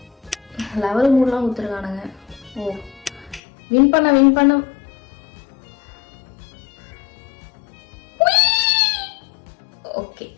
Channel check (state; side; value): drops out; right; at 3.4 s